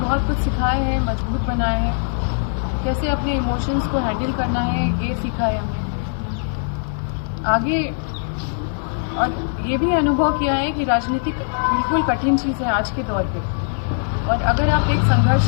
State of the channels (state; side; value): silent; right; digital silence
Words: कुछ सिखाए हैं, मजबूत बनाए हैं। कैसे अपने इमोशंस को हैंडल करना है, ये सीखा है हमने आगे। और ये भी अनुभव किया है कि राजनीति बिल्कुल कठिन चीज़ है आज के दौर पे। और अगर आप एक